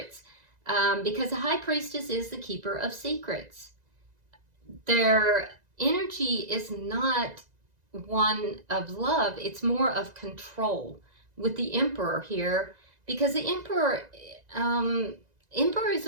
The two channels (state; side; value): late; left; 2.0 ms